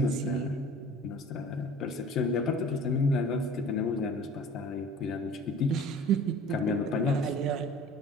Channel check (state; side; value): normal; both; correlation 0.45